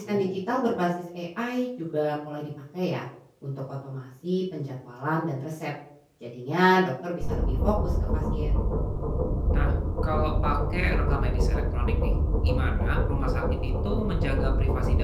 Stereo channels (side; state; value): both; identical; correlation 1.00